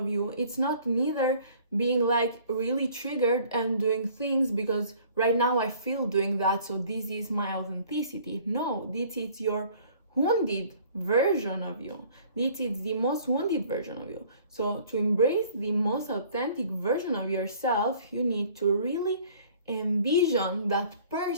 you, it's not neither being like really triggered and doing things because right now I feel doing that, so this is my authenticity. No, this is your wounded version of you. This is the most wounded version of you. So to embrace the most authentic version of yourself, you need to really envision that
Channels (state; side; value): inverted; both; correlation -0.54